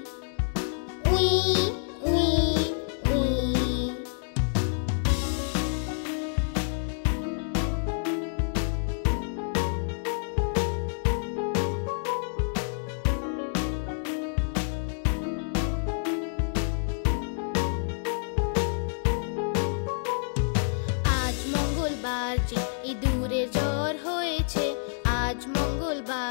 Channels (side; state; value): right; silent; digital silence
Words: উই উই উই। আজ মঙ্গলবার যে ইঁদুরের জ্বর হয়েছে, আজ